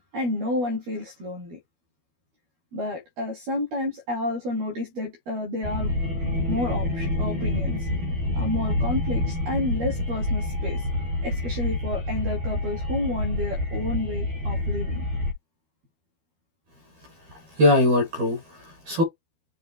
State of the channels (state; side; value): late; left; 12 ms